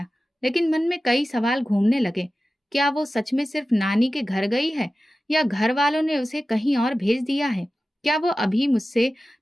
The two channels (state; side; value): normal; both; correlation 0.95